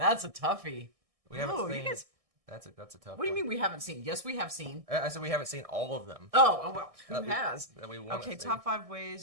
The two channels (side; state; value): left; late; 1.6 ms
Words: a toughie. We haven't seen. That's a tough. What do you mean we haven't seen? Yes, we have seen. I said we haven't seen all of them. Oh well, who has? Okay, top 5